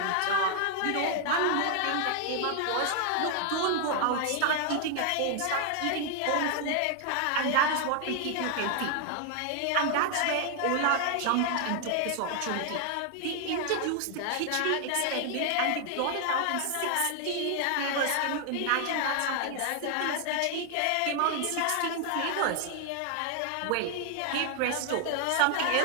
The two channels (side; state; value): both; different; correlation 0.00